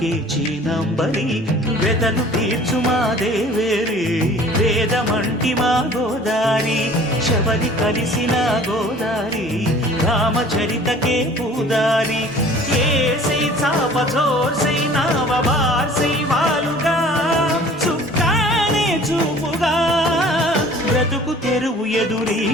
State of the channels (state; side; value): normal; both; correlation 0.49